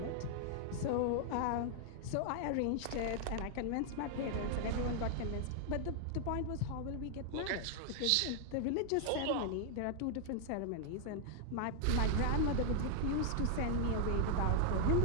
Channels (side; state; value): both; different; correlation 0.00